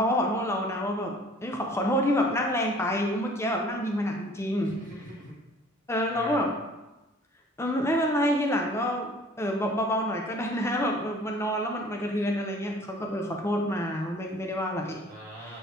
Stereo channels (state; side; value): normal; both; correlation 0.51